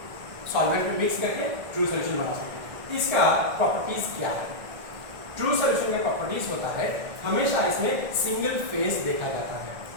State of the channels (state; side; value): late; left; 1.8 ms